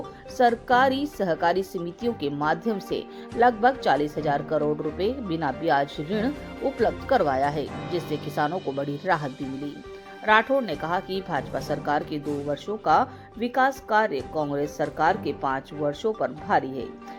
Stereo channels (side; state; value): both; identical; correlation 1.00